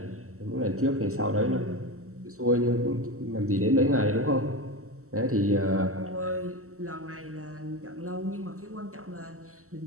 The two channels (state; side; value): late; left; 0.64 ms